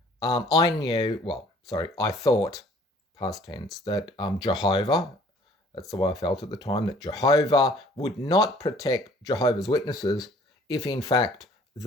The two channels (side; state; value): both; normal; correlation 0.55